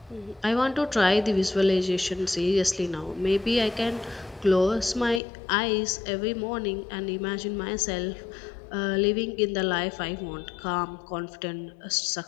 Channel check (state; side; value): drops out; right; at 5.2 s